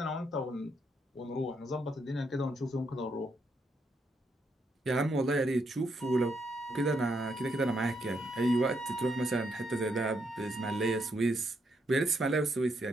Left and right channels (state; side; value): normal; both; correlation 0.77